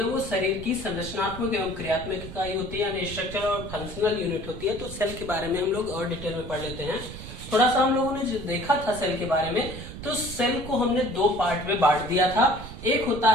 वो शरीर की संरचनात्मक एवं क्रियात्मक इकाई होती है, यानी स्ट्रक्चर और फंक्शनल यूनिट होती है। तो सेल के बारे में हम लोग और डिटेल में पढ़ लेते हैं। थोड़ा सा हम लोगों ने जो देखा था सेल के बारे में, तो सेल को हमने दो पार्ट में बांट दिया था। एक होता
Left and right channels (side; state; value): right; noise; rumble, 11 dB below the sound